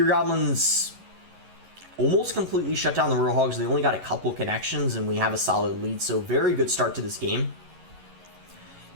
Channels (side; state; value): left; late; 11 ms